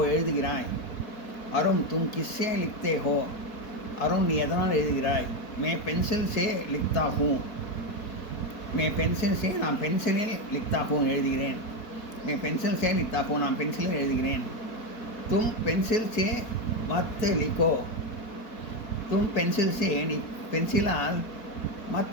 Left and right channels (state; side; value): late; right; 4.2 ms